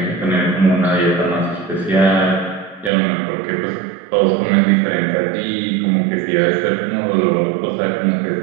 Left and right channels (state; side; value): drops out; left; at 2.9 s